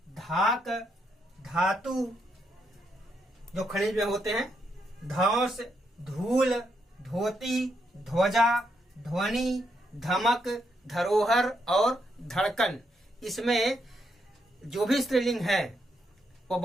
धाक, धातु जो खनिज में होते हैं, धौंस, धूल, धोती, ध्वजा, ध्वनि, धमक, धरोहर और धड़कन। इसमें जो भी स्त्रीलिंग है वो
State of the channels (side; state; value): both; normal; correlation 0.79